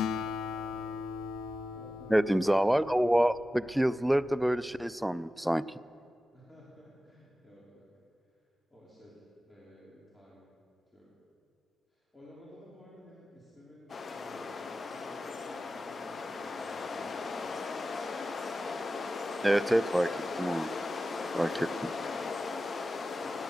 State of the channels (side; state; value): both; normal; correlation 0.94